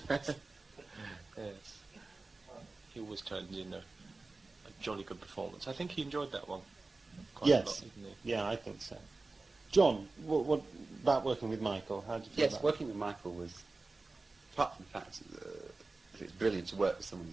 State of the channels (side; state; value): left; quieter; 3.5 dB